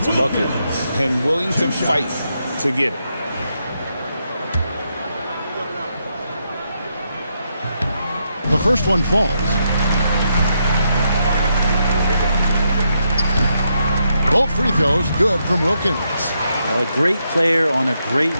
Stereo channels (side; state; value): both; inverted; correlation -0.80